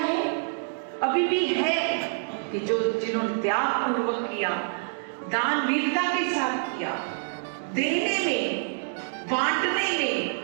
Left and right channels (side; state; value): left; silent; digital silence